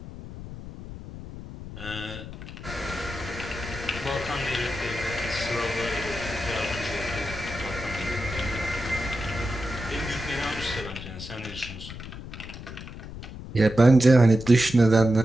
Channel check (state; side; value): noise; left; rumble, 11 dB below the sound